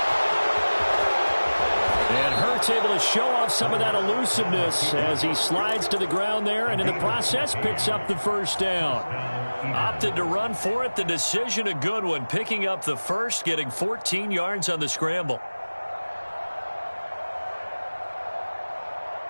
Looks able to show off some of that elusiveness as he slides to the ground there, and in the process picks up the first down. Opted to run for it. The decision a good one. Picking up the first, getting 14 yards on the scramble.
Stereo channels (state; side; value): inverted; both; correlation -1.00